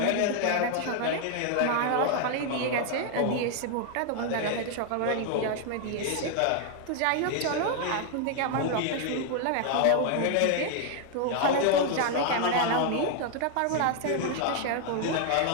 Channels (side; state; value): both; different; correlation 0.00